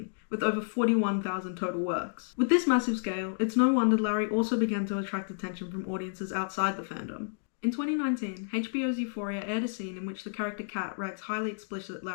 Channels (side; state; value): right; silent; digital silence